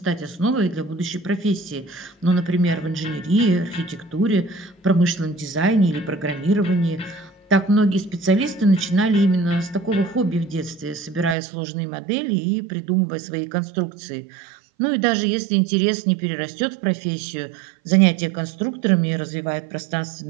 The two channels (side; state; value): left; drops out; at 11.4 s